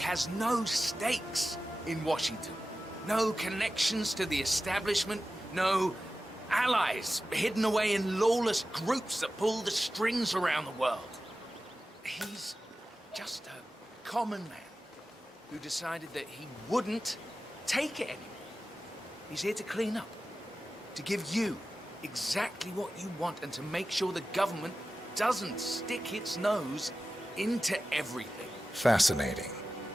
no stakes in Washington. No connections to the establishment. No allies hidden away in lawless groups that pull the strings around the world. He's just a common man who decided that he wouldn't take it anymore. He's here to clean up, to give you exactly what you want and to make sure the government doesn't stick its nose into everything. Fascinating.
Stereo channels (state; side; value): normal; both; correlation 0.94